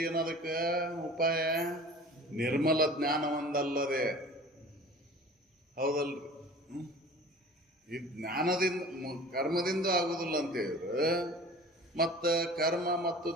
ಏನು ಅದಕ್ಕೆ ಉಪಾಯ? ನಿರ್ಮಲ ಜ್ಞಾನ ಒಂದಲ್ಲದೆ. ಹೌದಲ್ರಿ? ಈ ಜ್ಞಾನದಿಂದ ಕರ್ಮದಿಂದ ಆಗುದಿಲ್ಲ ಅಂತ ಹೇಳಿದ್ರು, ಮತ್ತು ಕರ್ಮ ಮತ್ತು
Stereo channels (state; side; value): normal; both; correlation 0.42